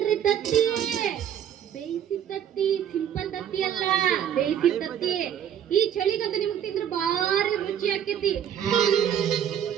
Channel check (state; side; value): quieter; left; 9.5 dB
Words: ತತ್ತಿ. ಬೇಯಿಸಿ ತತ್ತಿ, ಸಿಂಪಲ್ ತತ್ತಿ ಅಲ್ಲ, ಬೇಯಿಸಿ ತತ್ತಿ. ಈ ಚಳಿಗಂತ ನಿಮ್ಗೆ ತಿಂದ್ರೆ ಬಾರಿ ರುಚಿ ಆಕೈತಿ.